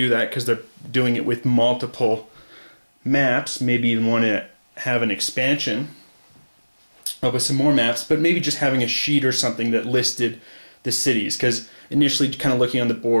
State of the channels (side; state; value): both; inverted; correlation -1.00